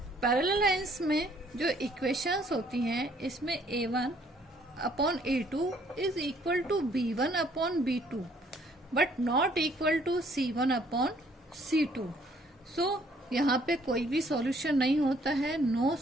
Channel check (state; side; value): normal; both; correlation 0.63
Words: Parallel lines में जो इक्वेशंस होती हैं, इसमें a1 upon a2 is equal to b1 upon b2 but not equal to c1 upon c2। So यहाँ पे कोई भी सॉल्यूशन नहीं होता है, नो